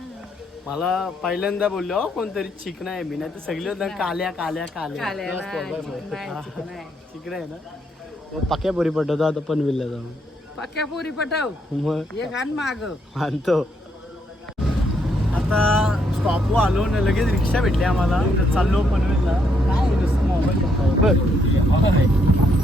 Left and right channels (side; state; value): both; normal; correlation 0.74